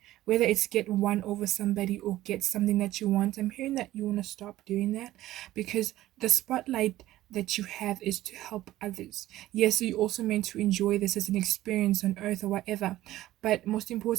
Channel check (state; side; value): quieter; left; 15.2 dB